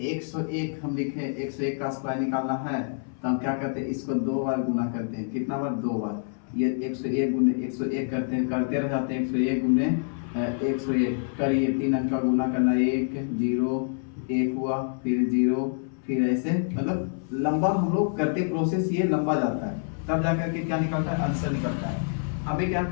101 हम लिखे 101 का स्क्वायर निकालना है तो हम क्या करते हैं, इसको 2 बार गुना करते हैं। कितना बार? 2 बार। ये 101 गुने 101 करते हैं, करते रह जाते हैं। 101 गुने 101 करिए, 3 अंक का गुना करना, 1 0 1 हुआ, फिर 0, फिर ऐसे लंबा हम लोग करते प्रोसेस, ये लंबा जाता है। तब जाकर के क्या निकलता है, आंसर निकलता है। हमें क्या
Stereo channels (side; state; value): right; silent; 59 dB below the other